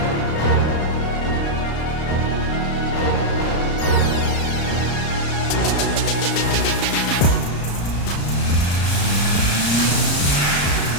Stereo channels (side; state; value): right; late; 34 ms